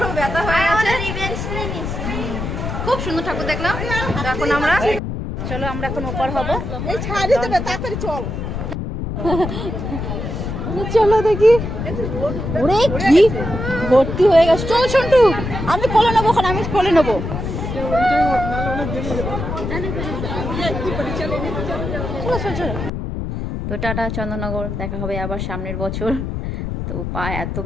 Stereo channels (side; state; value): left; noise; rumble, 4 dB below the sound